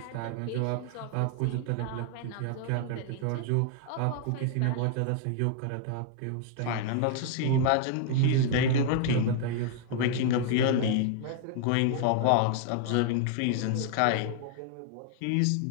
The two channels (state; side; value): different; both; correlation 0.00